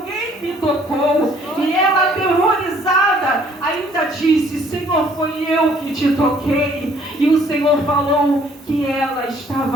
me tocou. E ela, aterrorizada, ainda disse: Senhor, foi eu que te toquei. E o Senhor falou que ela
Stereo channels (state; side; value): normal; both; correlation 0.60